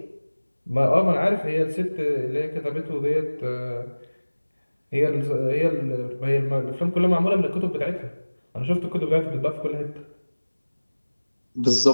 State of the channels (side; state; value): both; inverted; correlation -1.00